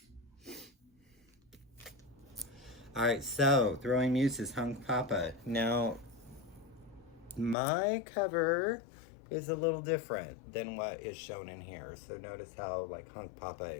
All right, so Throwing Muses, Hunk Papa. Now, my cover is a little different than what is shown in here. So notice how like Hunk Papa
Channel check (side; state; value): right; drops out; at 7.6 s